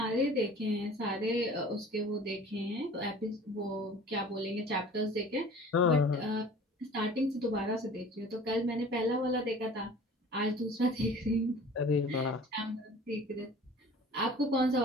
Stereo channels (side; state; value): both; normal; correlation 0.45